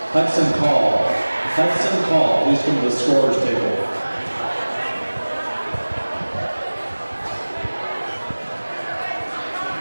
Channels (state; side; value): inverted; both; correlation -1.00